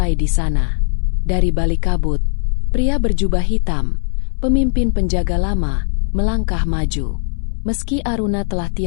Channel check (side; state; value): right; silent; 62 dB below the other